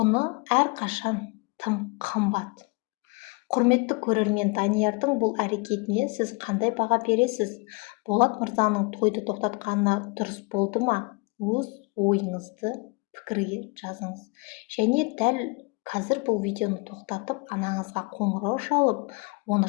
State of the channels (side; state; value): right; quieter; 29.7 dB